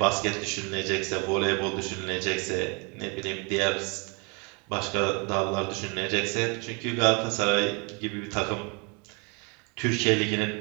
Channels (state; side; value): quieter; left; 32.3 dB